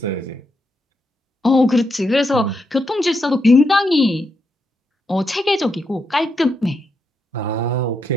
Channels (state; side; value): normal; both; correlation 0.82